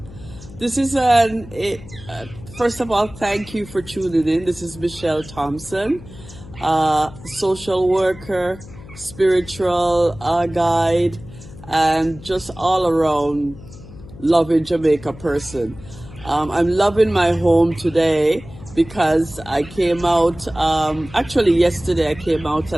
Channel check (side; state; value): left; noise; hum, 17 dB below the sound